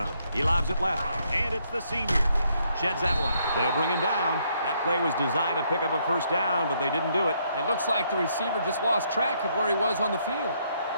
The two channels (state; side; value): inverted; both; correlation -0.72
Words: He lobs it left, and it's the senior. Sheds that one. They'll bring him down. That play was designed to pick up a first down, but they didn't do it. It looks like the receiver just lost track of where he was on the field.